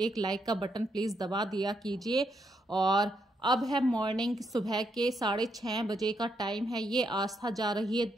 लाइक का बटन प्लीज़ दबा दिया कीजिए। और अब है मॉर्निंग, सुबह के 6:30 बजे का टाइम है। ये आस्था जा रही है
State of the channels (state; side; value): normal; both; correlation 0.78